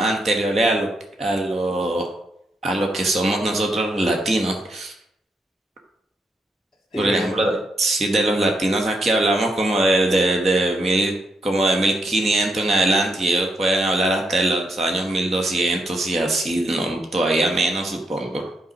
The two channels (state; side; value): normal; both; correlation 0.80